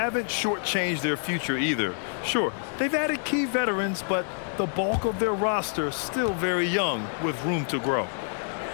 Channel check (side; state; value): right; silent; 60 dB below the other